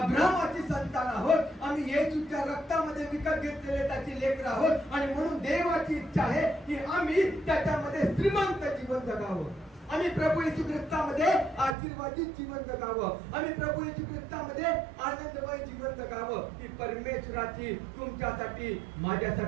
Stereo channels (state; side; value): drops out; left; at 11.8 s